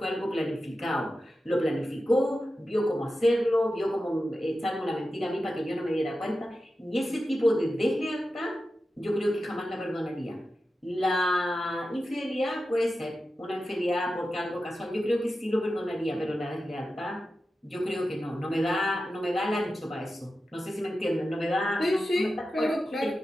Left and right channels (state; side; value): normal; both; correlation 0.92